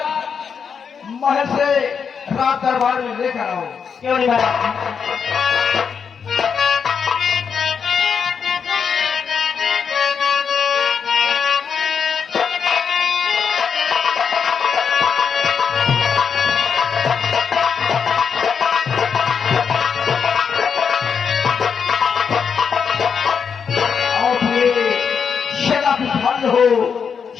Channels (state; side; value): quieter; right; 6.5 dB